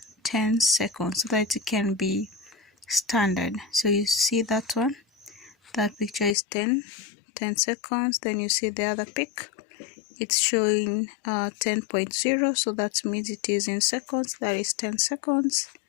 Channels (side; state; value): right; drops out; at 6.4 s